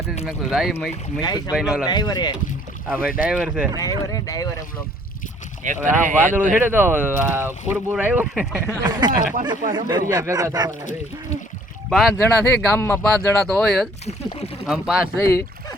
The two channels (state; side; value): normal; both; correlation 0.58